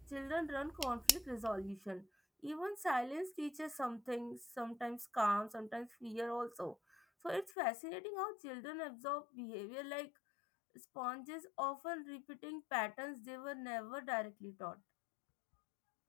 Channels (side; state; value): right; drops out; at 7.6 s